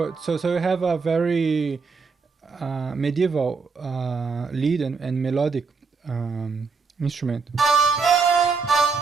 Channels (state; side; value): quieter; left; 4.9 dB